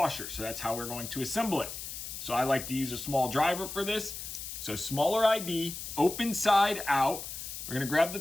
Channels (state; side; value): noise; left; hiss, 8 dB below the sound